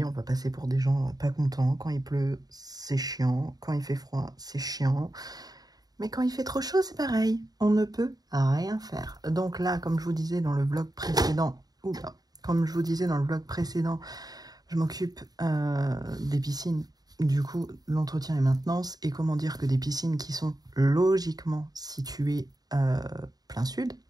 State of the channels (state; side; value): late; left; 0.19 ms